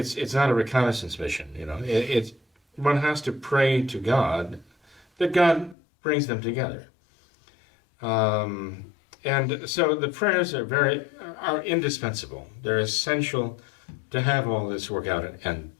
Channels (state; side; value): drops out; right; at 5.8 s